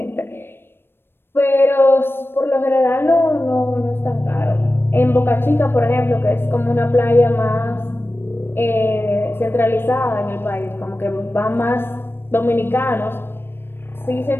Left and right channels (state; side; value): late; right; 0.10 ms